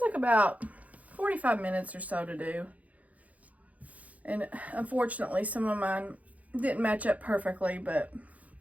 about 45 minutes or so to do. And unfortunately, some of mine didn't match up perfectly, but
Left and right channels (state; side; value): late; left; 0.071 ms